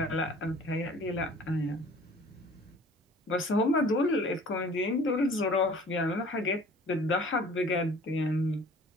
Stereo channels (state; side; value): normal; both; correlation 0.50